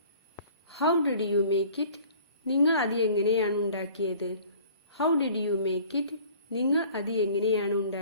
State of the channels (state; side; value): inverted; both; correlation -0.50